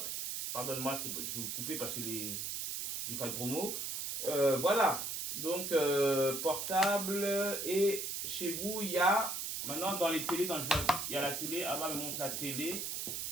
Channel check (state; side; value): noise; right; hiss, 3 dB below the sound